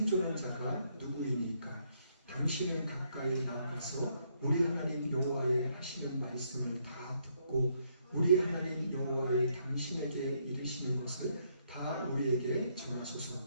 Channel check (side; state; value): both; inverted; correlation -0.73